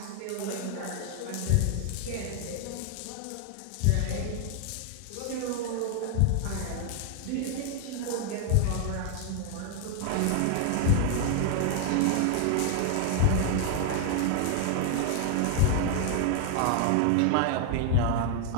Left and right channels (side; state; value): both; different; correlation 0.00